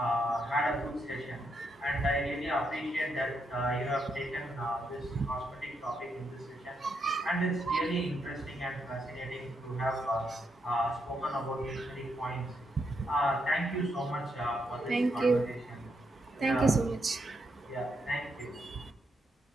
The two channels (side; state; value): both; normal; correlation 0.80